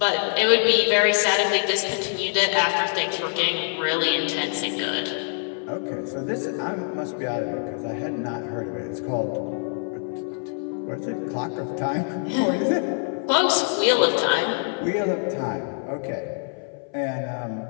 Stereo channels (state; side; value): silent; right; 57 dB below the other